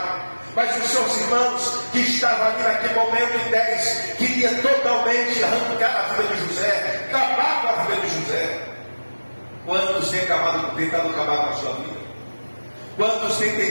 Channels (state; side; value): inverted; both; correlation -1.00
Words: Mas os seus irmãos que estavam ali naquele momento em 10 queria totalmente arrancar a vida de José, acabar com a vida de José. Quantos têm tentado acabar com a sua vida? Quantos têm